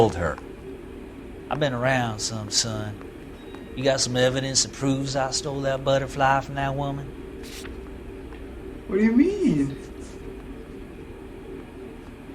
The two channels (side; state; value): both; identical; correlation 1.00